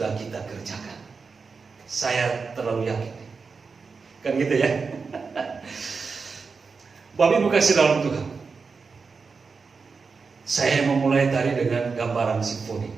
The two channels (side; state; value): left; quieter; 4.9 dB